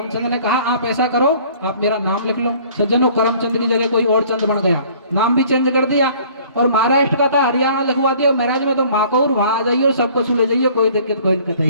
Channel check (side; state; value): both; inverted; correlation -0.53